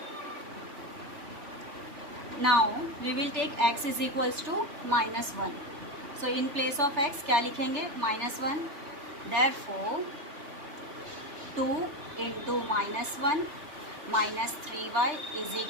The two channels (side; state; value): left; late; 3.3 ms